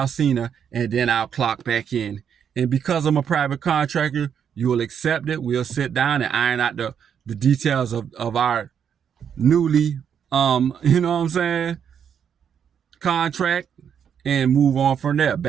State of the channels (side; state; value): left; quieter; 8.0 dB